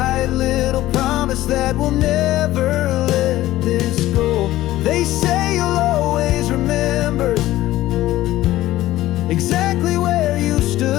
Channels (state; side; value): quieter; right; 15.6 dB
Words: little promise that we'll never let this go. They say you'll always remember exactly where you